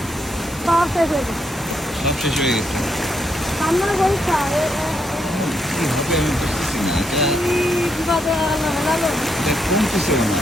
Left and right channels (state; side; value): normal; both; correlation 0.78